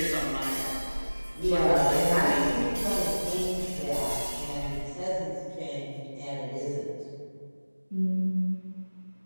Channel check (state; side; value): inverted; both; correlation -1.00